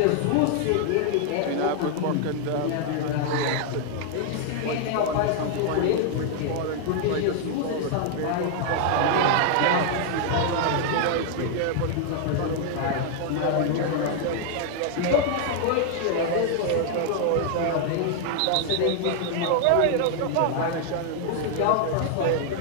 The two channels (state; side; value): different; both; correlation 0.00